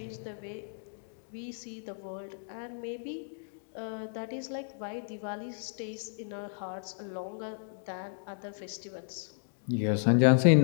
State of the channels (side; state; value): right; silent; digital silence